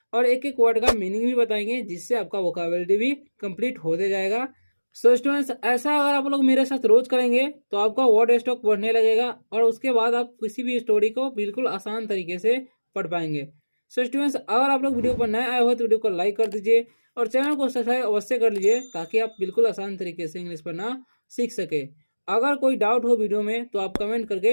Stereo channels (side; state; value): both; inverted; correlation -1.00